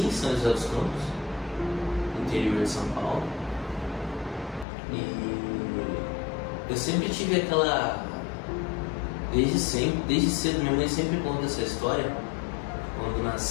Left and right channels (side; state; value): right; drops out; at 4.7 s